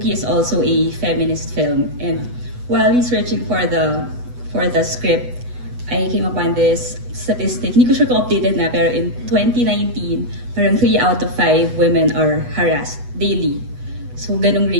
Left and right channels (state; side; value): late; left; 8.1 ms